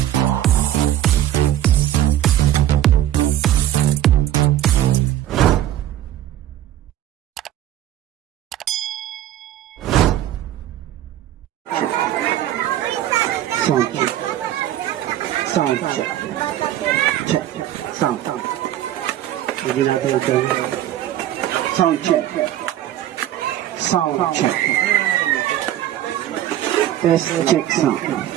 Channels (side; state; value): left; quieter; 12.4 dB